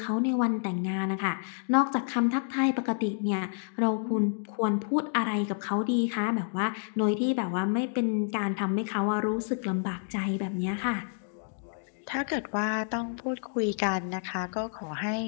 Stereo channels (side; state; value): right; silent; digital silence